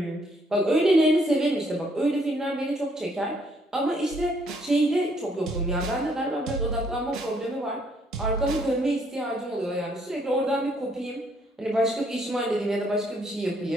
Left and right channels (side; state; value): both; normal; correlation 0.69